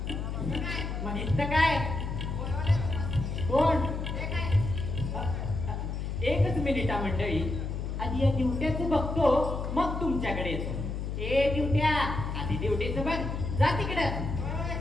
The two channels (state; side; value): noise; left; hum, 4 dB below the sound